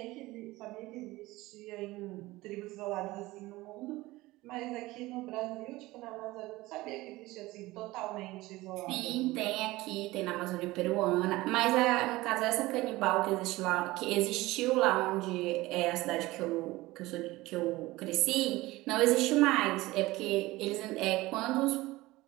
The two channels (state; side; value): quieter; left; 19.3 dB